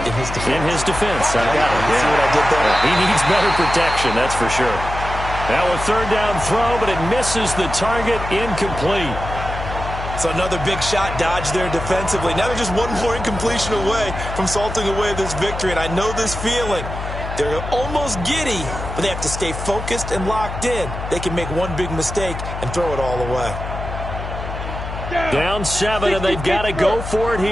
In his defense. In his defense. I got it. See what I did there? He needs better protection, that's for sure. Now a 3rd down throw, but it misses the target, incomplete. So another big shot dodge there defensively. Now they're just one more incompletion away from salting away this victory. And I know this feeling. They're almost giddy, but they have to stay focused and locked in. They can make one big mistake and throw it all away. Down 7, and they've got to go for it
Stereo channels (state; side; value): noise; left; hum, 7 dB below the sound